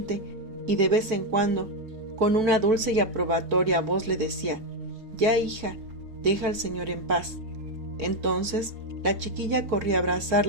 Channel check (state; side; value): late; left; 4.5 ms